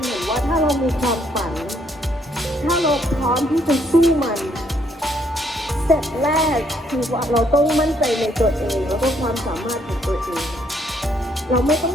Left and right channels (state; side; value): normal; both; correlation 0.69